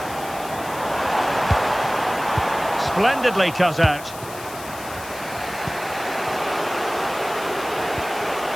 Splendidly cut out.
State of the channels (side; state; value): left; noise; hiss, 15 dB below the sound